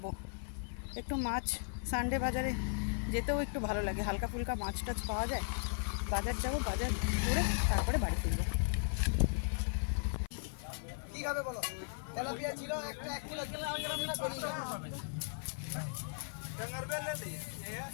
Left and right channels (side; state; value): right; silent; 53 dB below the other